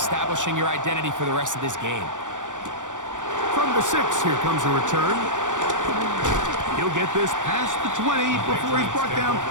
your identity for the rest of this game. From the 6, here comes a return. He'll get this past the 20 before he's brought down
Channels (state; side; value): late; left; 0.87 ms